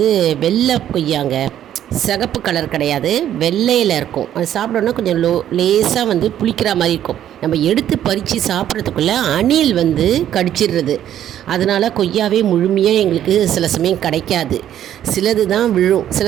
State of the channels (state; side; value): quieter; left; 11.0 dB